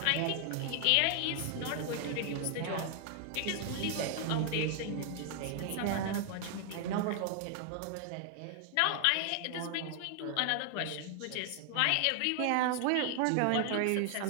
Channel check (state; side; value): different; both; correlation 0.00